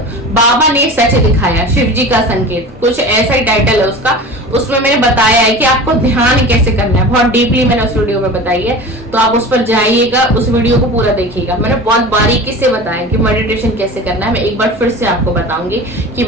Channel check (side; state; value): both; normal; correlation 0.34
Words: बाबा ने सच दिखाया, शिव जी का संकेत, कुछ ऐसा ही टाइटल है उसका। उसमें मैंने बताया है कि आपको ध्यान कैसे करना है, बहुत डीपली मैंने उस वीडियो में बताई है, तो आप उस पर जाइएगा, उस वीडियो को पूरा देखिएगा। मैंने बहुत बारीकी से बताया कि मेडिटेशन कैसे करना है। मैं एक बार फिर से आपको बताऊंगी कि